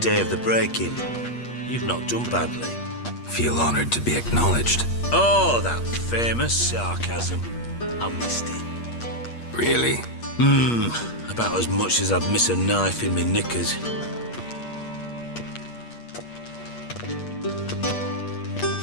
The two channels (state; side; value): late; right; 8.4 ms